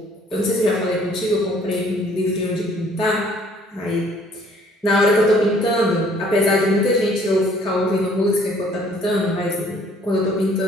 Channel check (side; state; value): both; normal; correlation 0.59